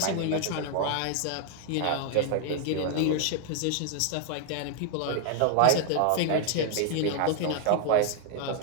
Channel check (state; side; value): different; both; correlation 0.00